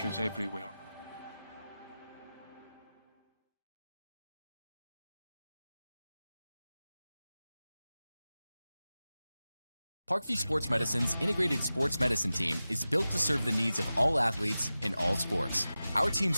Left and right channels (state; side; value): inverted; both; correlation -0.95